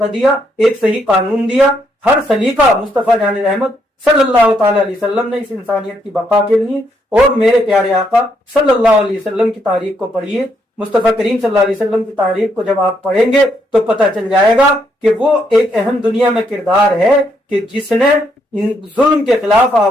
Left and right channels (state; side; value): normal; both; correlation 0.75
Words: دیا، ایک صحیح قانون دیا. ہر سلیقہ مصطفیٰ جان رحمت صلی اللہ تعالی علیہ وسلم نے اس انسانیت کی بقا کے لیے. اور میرے پیارے آقا صلی اللہ علیہ وسلم کی تاریخ کو پڑھیے، مصطفیٰ کریم صلی اللہ علیہ وسلم کی تاریخ کو جب آپ پڑھیں گے تو پتہ چل جائے گا کہ وہ ایک اہم دنیا میں کردار ہے کہ جس نے ظلم کے خلاف